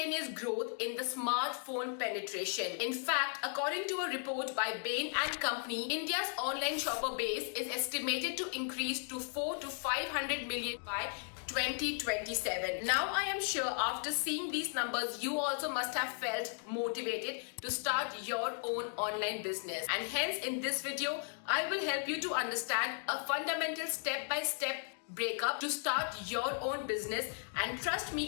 growth in the smartphone penetration. In fact, according to a report by Bain and Company, India's online shopper base is estimated to increase to 4 to 500 million by 2027. Now I am sure after seeing these numbers, you also must have felt motivated to start your own online business. And hence in this video, I will help you to understand a fundamental step-by-step breakup to start your own business. And trust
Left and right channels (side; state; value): right; silent; 54 dB below the other